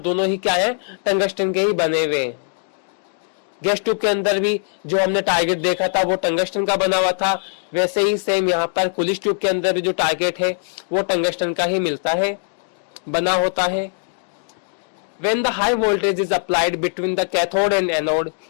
ही क्या है, टंगस्टन के ही बने हुए हैं। गैस ट्यूब के अंदर भी जो हमने टारगेट देखा था वो टंगस्टन का बना हुआ था, वैसे ही सेम यहाँ पर कुलिश ट्यूब के अंदर भी जो टारगेट है वो टंगस्टन का ही मिलता है, बना होता है। When the high voltage is applied between the cathode and anode,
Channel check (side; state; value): right; silent; 64 dB below the other